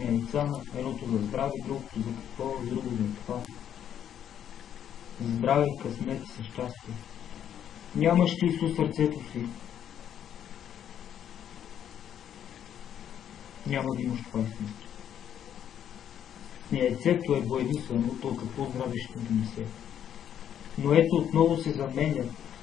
яйца, едното за здраве, другото за какво, друго за това. За здраве, късмет и щастие. Нямаш ли Исус сърцето си? Няма да имаш това истинство. Яйцето е боядисвано, то какво здраве ще донесе. Но ето отново се заменя,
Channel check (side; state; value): right; quieter; 9.7 dB